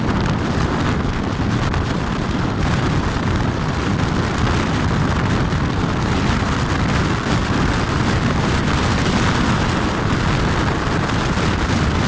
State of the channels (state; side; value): identical; both; correlation 1.00